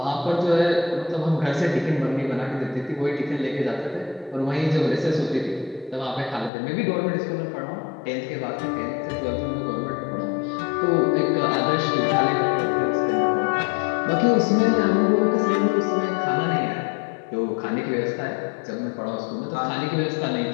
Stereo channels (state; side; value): drops out; right; at 6.5 s